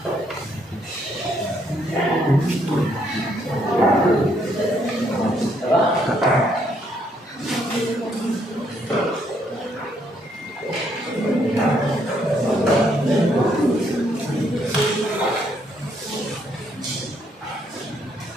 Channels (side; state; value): both; normal; correlation 0.71